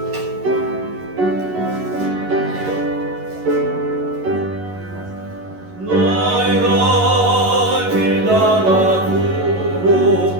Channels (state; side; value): late; left; 11 ms